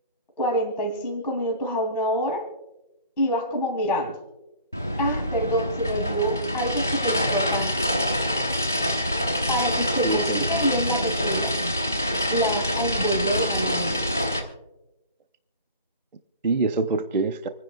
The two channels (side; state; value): both; inverted; correlation -0.46